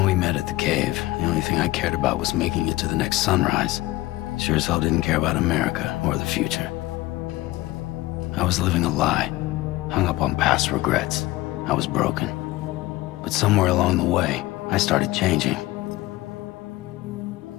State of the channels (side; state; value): right; quieter; 18.5 dB